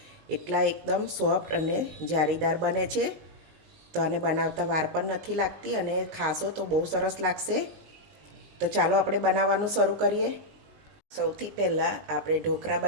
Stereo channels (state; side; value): late; left; 19 ms